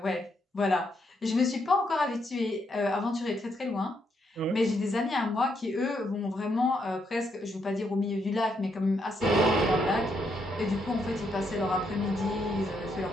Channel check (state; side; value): normal; both; correlation 0.77